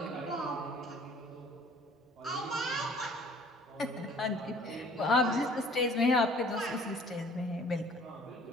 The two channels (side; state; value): both; normal; correlation 0.52